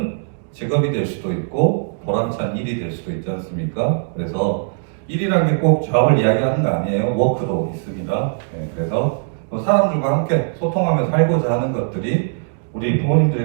직업이 될 수도 있고 보람찬 일이 될 수도 있지 않습니까? 그래서 일이라는 게 꼭 잡을 이야기하는 거 아니에요. 워크도 있습니다. 그래서 사람들과 함께 소통하며 살고자 하는 것들이 우리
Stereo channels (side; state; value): left; silent; digital silence